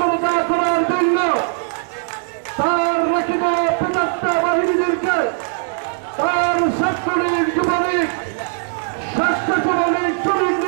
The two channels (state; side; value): silent; left; 66 dB below the other